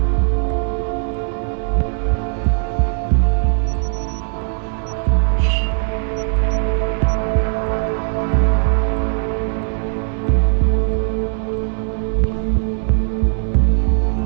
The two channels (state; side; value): silent; left; 60 dB below the other